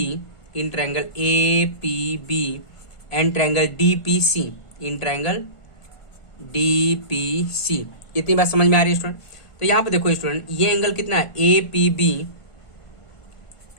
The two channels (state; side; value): late; right; 1.5 ms